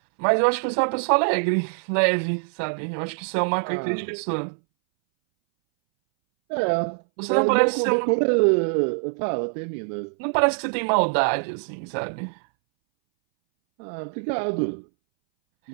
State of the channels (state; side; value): silent; left; 61 dB below the other